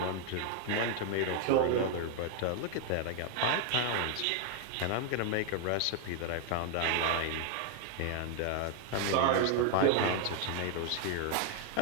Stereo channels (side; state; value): both; different; correlation 0.00